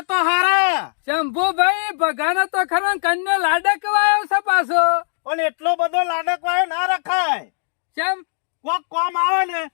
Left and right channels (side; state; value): right; silent; digital silence